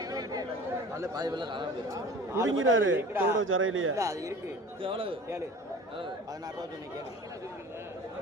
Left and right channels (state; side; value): normal; both; correlation 0.41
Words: நல்ல பாதி வெள்ள காணாம போயிடுச்சு. முடிங்கிறாரு தோட ஜரையிலேயே. இல்ல அது இருக்கு. எவ்வளவு கேளு 16 ரூபா சொன்னே கேளு.